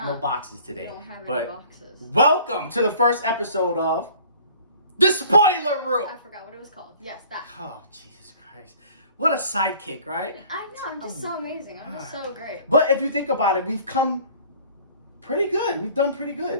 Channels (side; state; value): both; inverted; correlation -0.51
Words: no boxes today. We don't have but any boxes. Welcome to the first episode of The Spoiler Room. I forgot what it was called. Yes, that. Oh, Jesus Christ. What a sidekick, right? I know, I'm just so amazing. I'm just so great. But if you think about it, we've come pretty good. We've done pretty